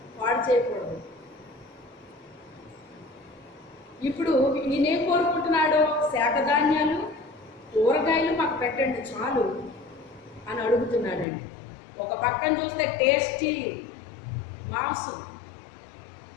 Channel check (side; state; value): right; drops out; at 11.2 s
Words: పాడు చేయకూడదు. ఇప్పుడు ఈయనేం కోరుకుంటున్నాడో, శాఖధాన్యాలు, కూరగాయలు మాకు పెట్టండి చాలు అని అడుగుతున్నాడండి. ఒక పక్కన చూస్తే టేస్టీ మాంసం